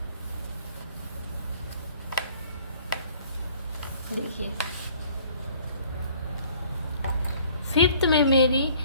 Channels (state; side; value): inverted; both; correlation -0.56